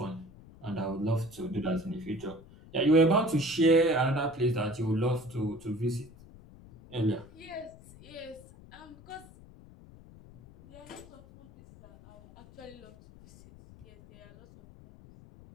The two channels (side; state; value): left; noise; rumble, 21 dB below the sound